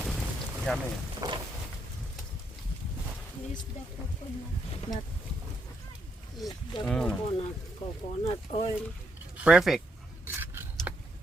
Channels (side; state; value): both; normal; correlation 0.78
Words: Yummy. Coconut oil. Perfect.